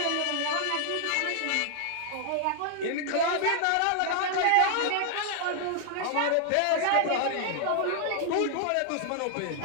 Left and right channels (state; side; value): different; both; correlation 0.00